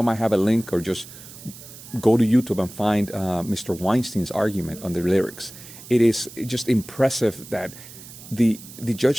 might have a link, or just go to YouTube and find Mr. Weinstein's argument on the lyrics. It is just impressive that the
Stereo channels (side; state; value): right; noise; hiss, 17 dB below the sound